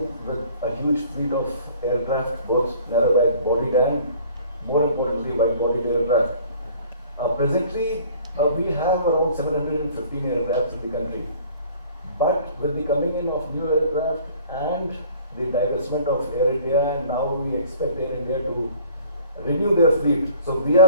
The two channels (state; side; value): inverted; both; correlation -0.52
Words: with a huge fleet of aircraft, both narrow-bodied and, more importantly, wide-bodied aircraft. Presently, we have around 715 aircraft in the country. But with the coming in of new aircraft and the divestment of Air India, and now we expect Air India to renew their fleet. So we